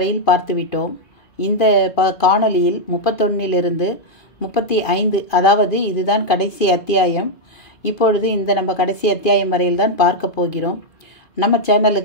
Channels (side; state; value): right; late; 2.5 ms